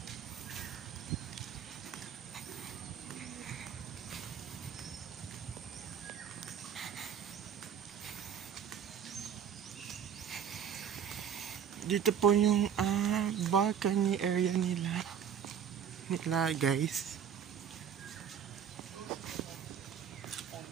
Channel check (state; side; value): quieter; left; 8.3 dB